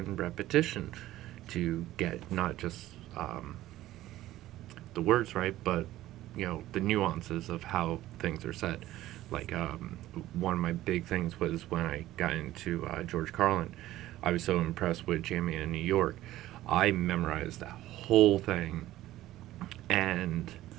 repetition to get not just the words right, but the nuances of how things are said. Like one of my big things was when I got into George Carlin. I was so impressed with Jamie in New York. I memorized that whole thing and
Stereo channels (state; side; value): quieter; left; 15.0 dB